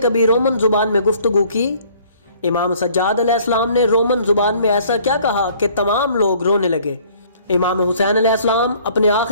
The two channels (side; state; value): both; inverted; correlation -0.57